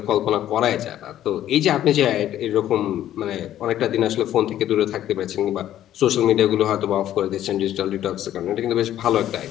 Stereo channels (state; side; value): quieter; right; 12.1 dB